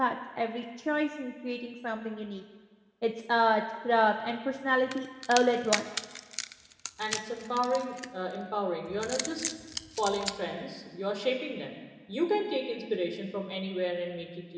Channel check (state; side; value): identical; both; correlation 1.00